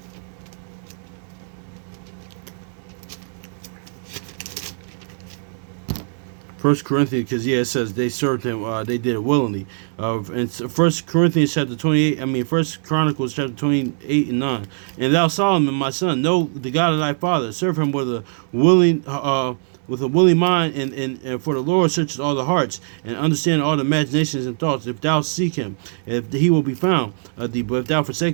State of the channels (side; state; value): left; silent; digital silence